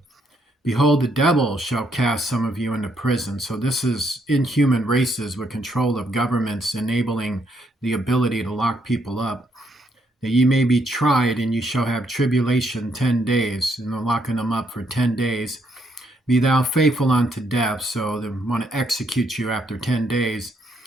Behold, the devil shall cast some of you into prison. So this is inhuman races with control of governments, enabling the ability to lock people up. That ye may be tried, and you shall have tribulation 10 days. And they're locking them up for 10 days. Be thou faithful unto death. So they want to execute you after 10 days,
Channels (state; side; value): normal; both; correlation 0.74